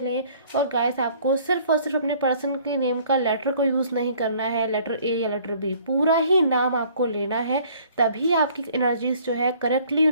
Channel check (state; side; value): inverted; both; correlation -0.56